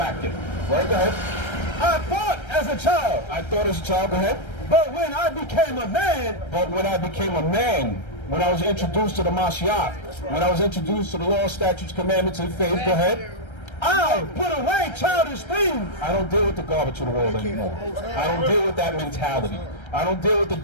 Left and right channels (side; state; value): right; late; 1.3 ms